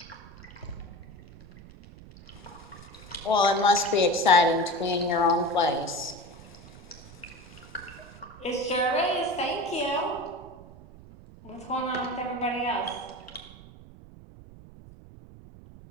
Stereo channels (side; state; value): right; noise; rumble, 19 dB below the sound